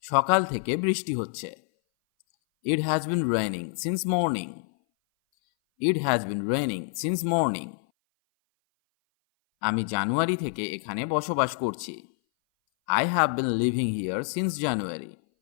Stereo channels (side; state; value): right; silent; 58 dB below the other